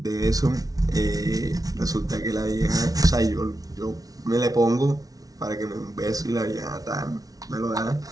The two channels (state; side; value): late; left; 0.18 ms